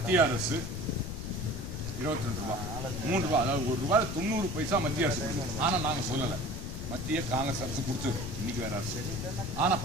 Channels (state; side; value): noise; left; rumble, 6 dB below the sound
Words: அரசு 22 ரூபாய், 3 ரூபாய், அதாவது 1 ரூபாய் 90 பைசா மத்திய அரசு. ஆனால் நாங்கள் சொல்லலை, மத்திய காங்கிரஸ் அரசு கொடுத்தது, இன்னைக்கு வேற அரசு. ஆனால்